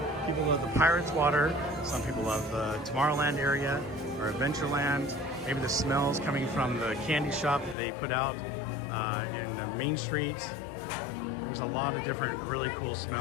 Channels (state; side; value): drops out; right; at 7.8 s